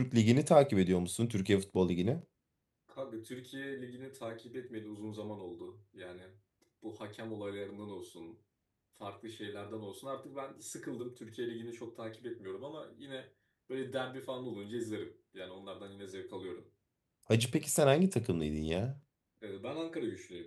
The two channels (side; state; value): both; identical; correlation 1.00